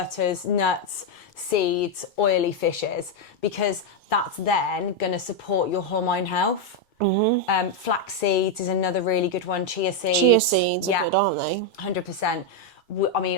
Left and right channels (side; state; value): both; normal; correlation 0.02